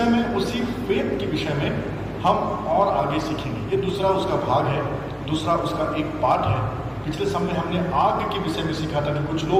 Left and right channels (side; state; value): both; identical; correlation 1.00